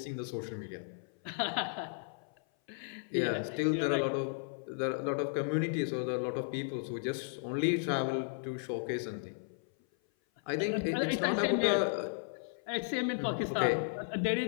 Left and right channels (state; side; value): silent; right; 55 dB below the other